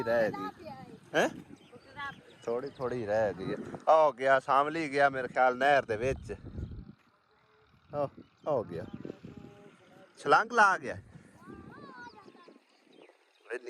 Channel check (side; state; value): both; identical; correlation 1.00